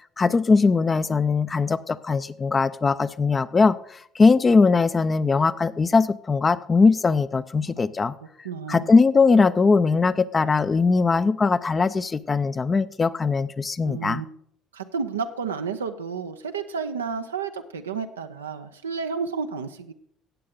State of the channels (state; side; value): quieter; right; 3.6 dB